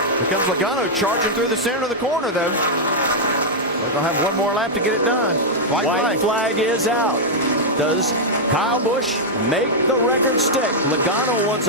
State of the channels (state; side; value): normal; both; correlation -0.04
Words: Here comes Logano charging through the center of the corner, though. They're going to have one more lap to get it done. White flag is out. Does Kyle Busch make the record stick? Logano wants